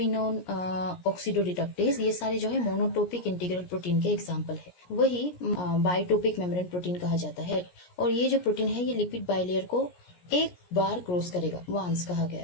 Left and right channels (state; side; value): late; right; 17 ms